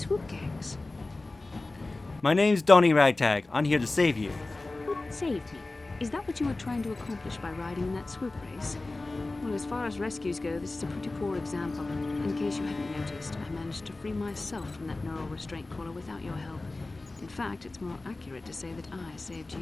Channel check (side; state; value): right; quieter; 3.1 dB